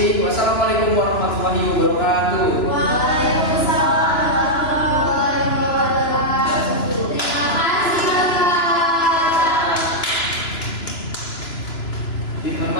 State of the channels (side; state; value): right; late; 2.9 ms